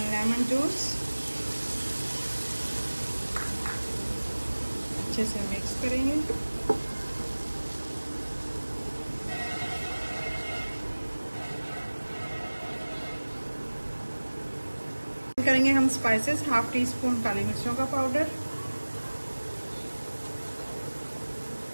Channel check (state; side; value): inverted; both; correlation -1.00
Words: lemon juice. अच्छे से मिक्स करेंगे। करेंगे हम स्पाइसेस, 1/2 टीस्पून काली मिर्चों का पाउडर,